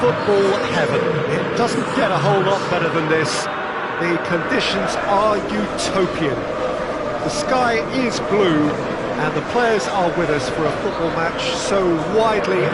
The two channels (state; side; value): identical; both; correlation 1.00